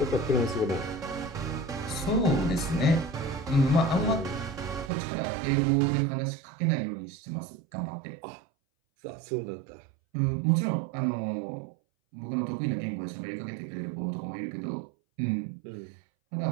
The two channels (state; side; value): drops out; left; at 4.9 s